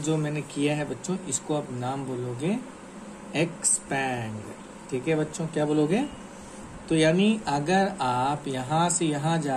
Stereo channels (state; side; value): identical; both; correlation 1.00